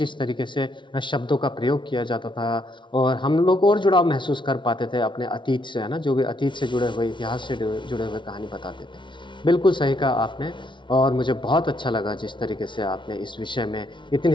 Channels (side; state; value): right; late; 0.24 ms